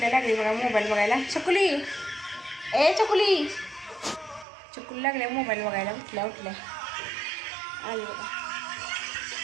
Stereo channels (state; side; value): drops out; left; at 4.5 s